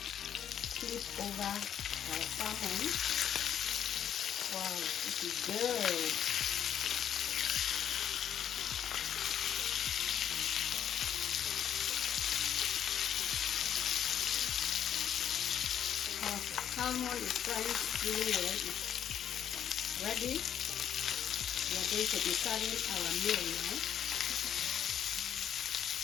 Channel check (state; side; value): quieter; right; 9.4 dB